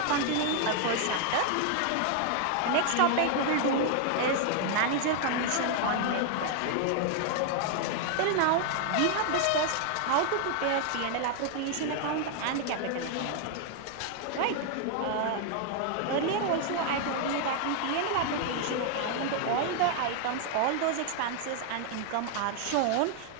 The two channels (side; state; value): both; different; correlation 0.00